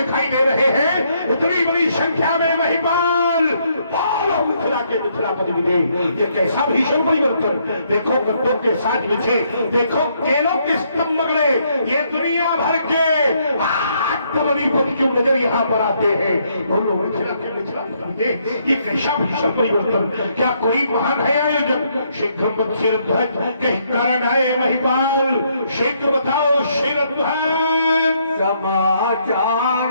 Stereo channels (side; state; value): both; inverted; correlation -0.72